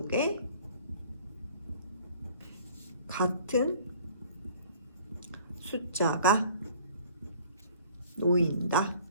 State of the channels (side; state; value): both; inverted; correlation -0.50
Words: 같은 숫자가 놓인다.